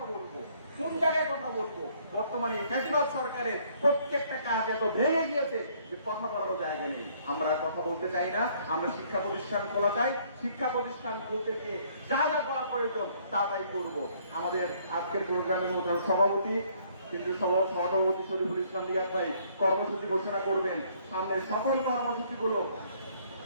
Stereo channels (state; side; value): inverted; both; correlation -0.63